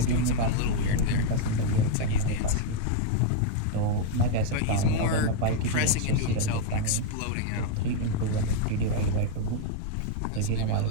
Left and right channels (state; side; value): different; both; correlation 0.00